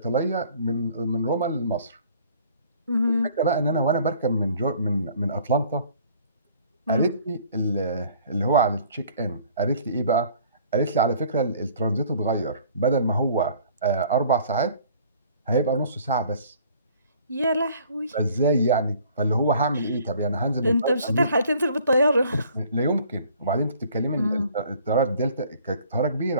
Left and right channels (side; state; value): both; inverted; correlation -0.54